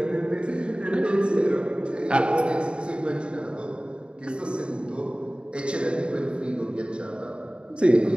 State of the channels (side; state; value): left; late; 0.054 ms